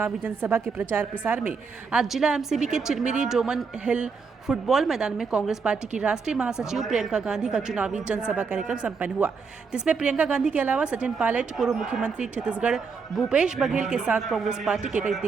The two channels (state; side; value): quieter; left; 5.2 dB